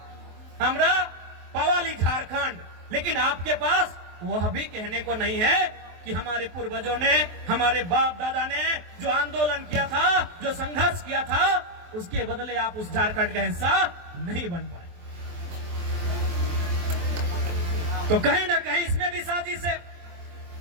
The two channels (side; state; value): left; late; 23 ms